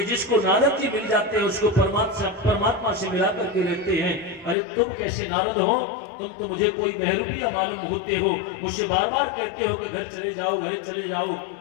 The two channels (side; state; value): right; drops out; at 4.5 s